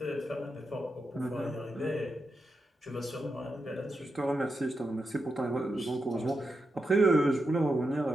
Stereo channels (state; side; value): normal; both; correlation 0.86